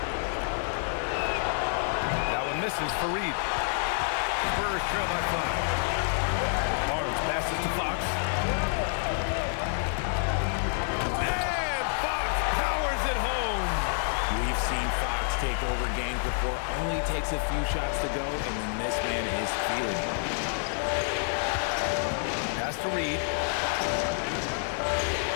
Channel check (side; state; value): right; silent; 58 dB below the other